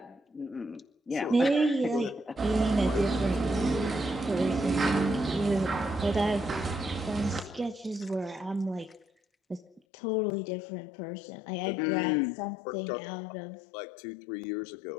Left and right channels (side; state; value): right; drops out; at 9.8 s